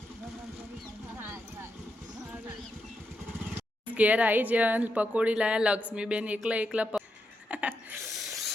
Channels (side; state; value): both; normal; correlation 0.84